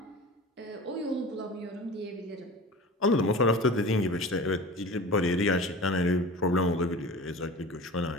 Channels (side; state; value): both; normal; correlation 0.37